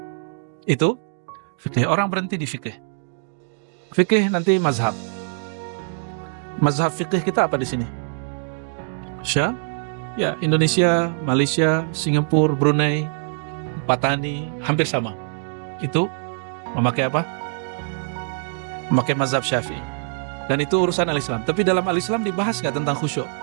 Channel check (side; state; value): left; silent; digital silence